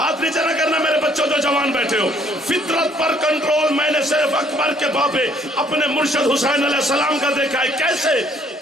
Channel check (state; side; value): normal; both; correlation 0.63